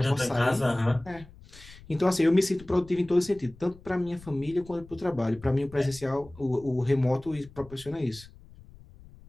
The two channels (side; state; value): left; noise; rumble, 21 dB below the sound